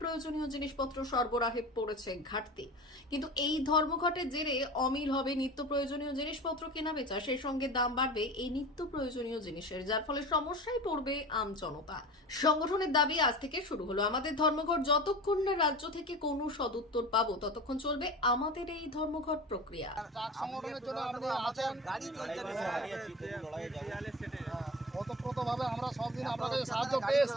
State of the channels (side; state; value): both; normal; correlation 0.34